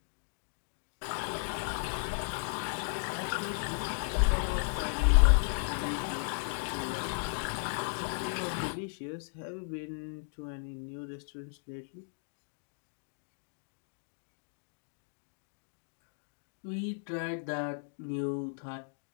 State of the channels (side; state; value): right; silent; digital silence